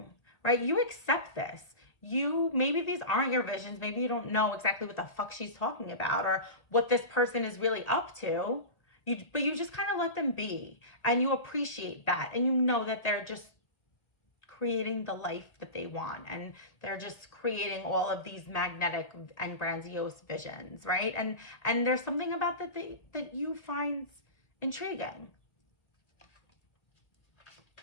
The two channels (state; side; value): late; right; 1.8 ms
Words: right? You accept this. Maybe these aren't your visions. Maybe you don't know exactly what the fuck she's talking about or what this person is really up to. But you just kind of let them be, and you appreciate that, and you know that they're just creating the life that they want, and they're just creating all of these magnetic and grandiose visions, right? And there's something about that you find intriguing.